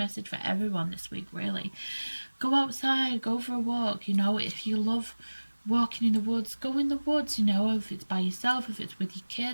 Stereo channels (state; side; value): inverted; both; correlation -1.00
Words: for everyone this week, really. Go outside, go for a walk, you know. If you love walking in the woods, go in the woods, you know. If it's by yourself, if it's with your